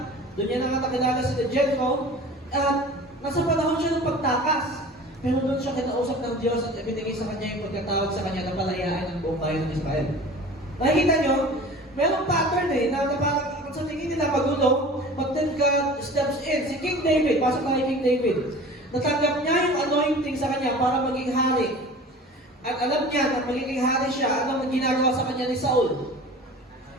Doon niya nakakilala si Jethro. At nasa panahon siya ng pagtakas. Pero doon siya kinausap ng Diyos at ibinigay sa kanya yung pagkatawag sa kanya na palayaan ng buong bayan ng Israel. Nakikita nyo? Merong pattern na parang sa tingin nila magulo, but then God steps in. Si King David, pasok na kay King David. Natanggap niya yung anointing sa kanya para maging hari. At alam niya na magiging hari siya, ano ang ginagawa sa kanya ni Saul?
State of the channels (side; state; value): both; normal; correlation 0.40